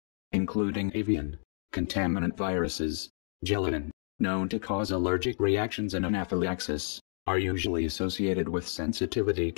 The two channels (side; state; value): right; silent; 58 dB below the other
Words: including avian, contaminant viruses, gelatin, known to cause allergic reactions and anaphylaxis, are usually associated with sensitivity